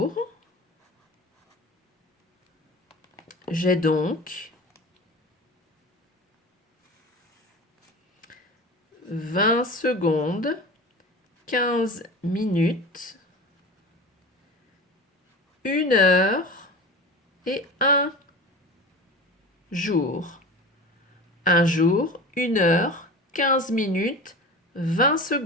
J'ai donc 20 secondes, 15 minutes, 1 heure et un jour. Un jour, 1 heure, 15 minutes, 20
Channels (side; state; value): both; normal; correlation 0.33